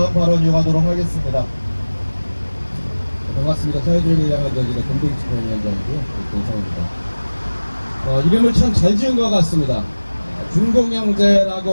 발언 이어가도록 하겠습니다. 반갑습니다. 사회주의를 향한 전진의 공동집행위원장이고요. 동성입니다. 이름을 참 잘 지은 것 같습니다.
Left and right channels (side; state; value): both; inverted; correlation -1.00